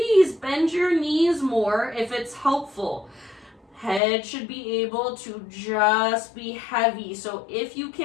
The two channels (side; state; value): right; drops out; at 4.0 s